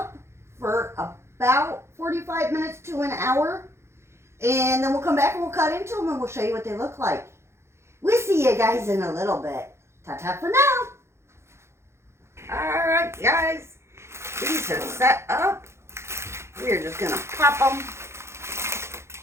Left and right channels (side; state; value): left; late; 0.13 ms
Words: for about 45 minutes to an hour. And then we'll come back and we'll cut into them and we'll show you what they look like. We'll see you guys in a little bit. Ta-ta for now. Alright, guys. These are set up. We're just going to pop them